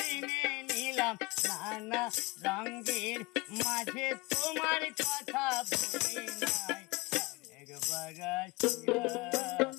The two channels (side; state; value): right; quieter; 24.6 dB